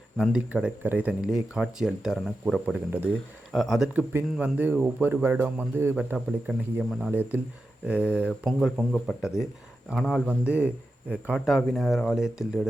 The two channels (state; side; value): normal; both; correlation 0.90